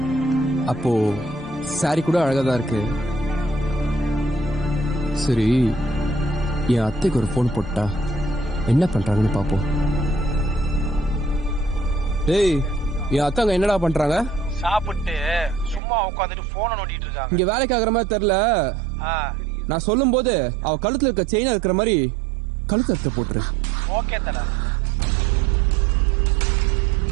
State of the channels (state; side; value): drops out; left; at 15.8 s